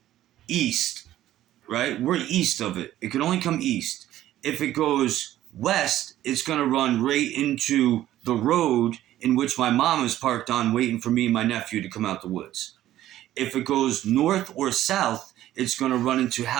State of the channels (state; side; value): quieter; left; 13.4 dB